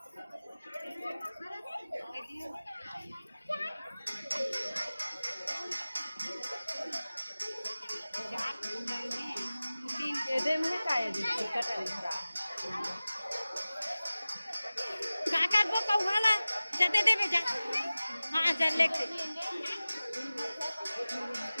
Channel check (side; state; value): both; inverted; correlation -0.97